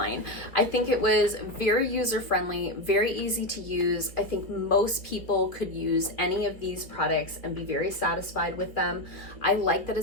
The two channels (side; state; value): right; late; 2.1 ms